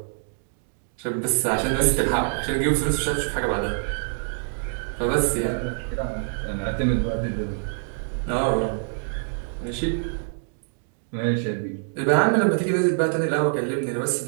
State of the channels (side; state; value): left; silent; digital silence